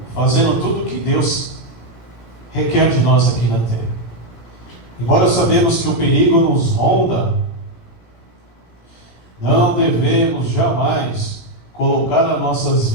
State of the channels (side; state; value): right; late; 17 ms